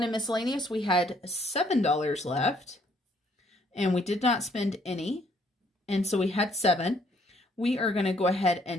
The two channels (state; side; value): normal; both; correlation 0.66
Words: and Miscellaneous, we had $7 left, and we did not spend any, and so we had 7. We are going to go ahead